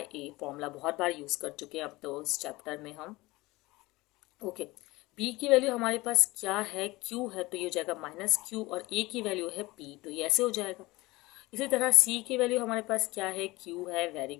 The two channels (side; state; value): right; quieter; 20.8 dB